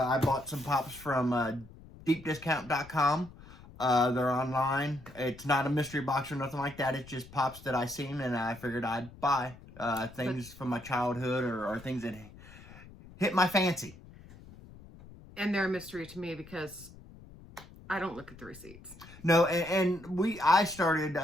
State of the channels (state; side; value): noise; left; rumble, 19 dB below the sound